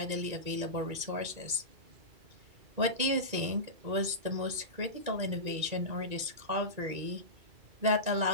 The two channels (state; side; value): late; left; 1.9 ms